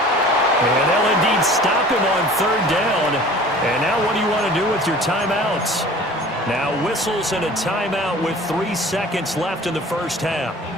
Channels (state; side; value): normal; both; correlation 0.45